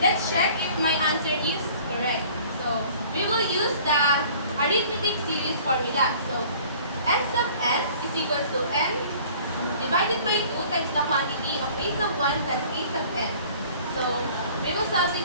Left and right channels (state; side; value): inverted; both; correlation -0.50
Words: let's check if my answer is correct. So, we will use the arithmetic series formula. So, S sub n is equals to n divided by 2 times the quantity of a sub 1 plus a sub n. So, we will